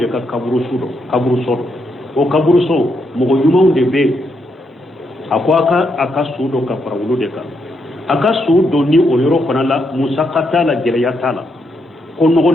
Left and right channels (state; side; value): normal; both; correlation 0.79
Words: ka kaburuso dɔ o kaburuso mɔgɔ ɲumanw de bɛ yen a ko a ka su dɔ ka fara olu de kan. A ka su dɔ ni o yɔrɔ fana la musaka t'a la gɛlɛya t'a la ko